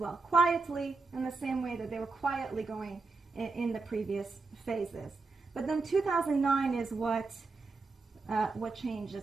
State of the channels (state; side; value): quieter; left; 3.9 dB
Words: quietly, in the same way that they were quietly going in the previous phases. But then 2009 is what